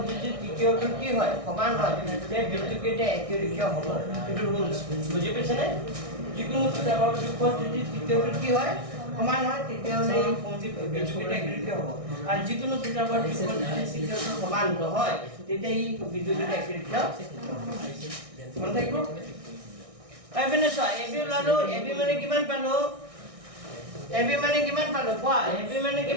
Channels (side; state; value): left; late; 1.6 ms